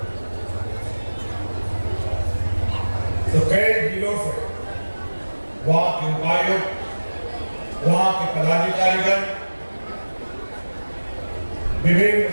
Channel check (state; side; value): inverted; both; correlation -1.00